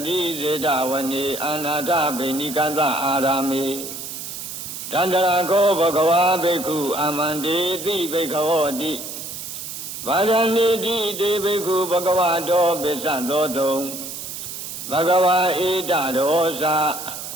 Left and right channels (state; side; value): noise; right; hiss, 8 dB below the sound